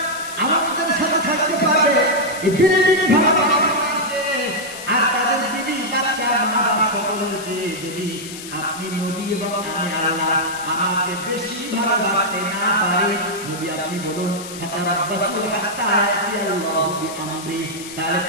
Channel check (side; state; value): left; noise; hiss, 12 dB below the sound